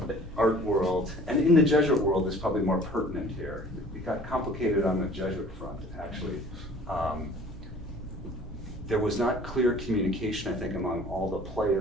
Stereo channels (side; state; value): both; normal; correlation 0.49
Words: art world. And in the Jesuit world is probably more pertinent here. It got complicated on the Jesuit front, actually. There was not clear communication, I think, among all the